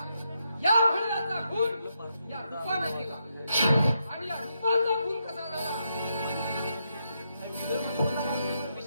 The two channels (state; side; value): inverted; both; correlation -0.81